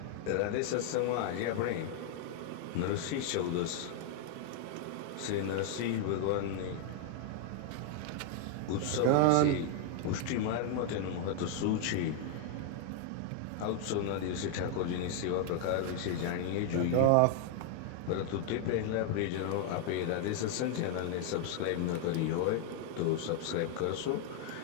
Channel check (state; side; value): different; both; correlation 0.00